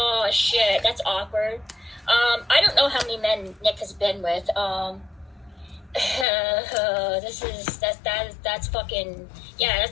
shit, that's awkward. I don't know how many men Nick has been with. That's fucking, yeah,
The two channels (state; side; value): drops out; right; at 6.2 s